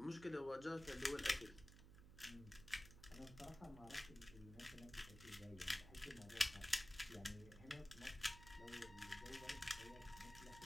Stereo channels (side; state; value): right; noise; hum, 15 dB below the sound